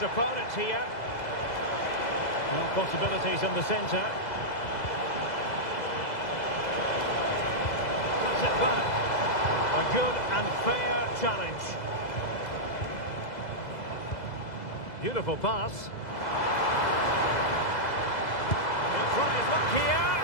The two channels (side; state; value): right; late; 2.0 ms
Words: opponents here. Well, possibilities in the centre. Cuts it back. A good and fair challenge. Beautiful pass. He'll try his luck here.